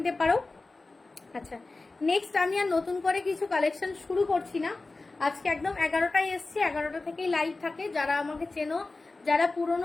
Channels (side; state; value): right; quieter; 3.4 dB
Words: পারো। আচ্ছা, নেক্সট আমি আর নতুন করে কিছু কালেকশন শুরু করছি না। আজকে একদম 11টায় এসছি, 11টা থেকেই লাইভ থাকে। যারা আমাকে চেনো, যারা